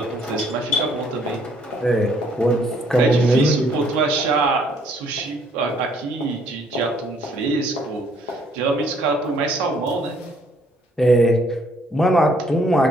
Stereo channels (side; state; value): both; normal; correlation 0.65